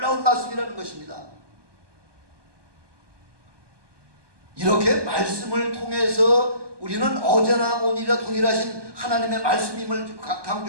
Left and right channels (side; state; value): left; late; 1.2 ms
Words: 말씀이라는 것입니다. 이렇게 말씀을 통해서 우리는 어제나 오늘이라 동일하신 하나님의 말씀임을